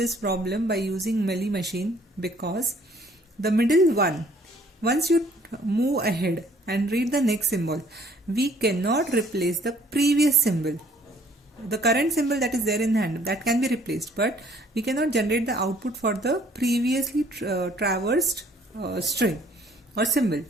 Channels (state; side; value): normal; both; correlation 0.59